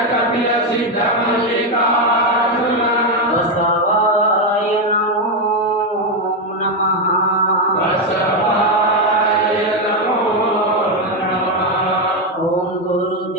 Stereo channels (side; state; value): both; normal; correlation 0.06